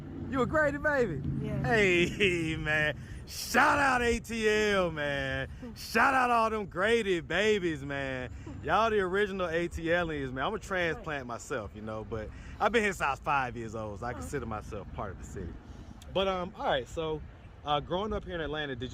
You a Grady baby? Yeah. Hey, man. Shout out ATL, man. Shout out all them Grady babies, man. Y'all the original ATLians, man. I'm a transplant myself, you know, but I've been here since I was 5 years old, so I consider myself part of the city. But, all right, so growing up here in Atlanta, did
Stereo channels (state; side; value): identical; both; correlation 1.00